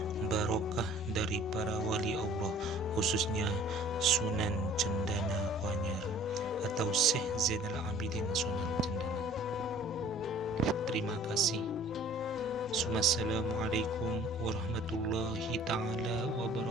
barokah dari para wali Allah, khususnya Sunan Cendana Kuanyar atau Syekh Zainal Abidin Sunan Cendana. Terima kasih. Assalamualaikum warahmatullahi ta'ala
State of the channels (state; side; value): normal; both; correlation 0.52